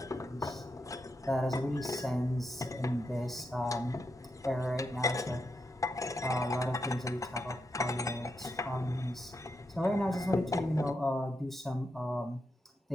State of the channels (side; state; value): both; normal; correlation 0.84